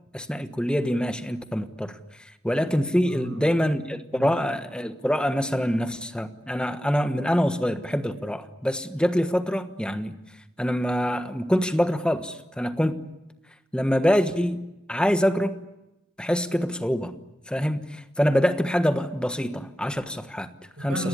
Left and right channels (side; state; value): both; normal; correlation 0.93